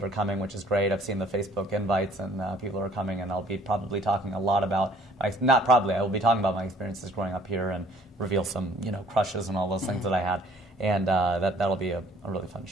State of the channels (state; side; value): normal; both; correlation 0.57